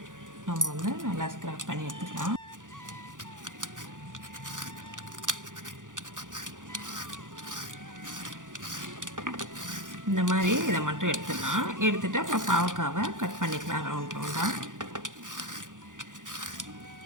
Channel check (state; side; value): late; left; 0.88 ms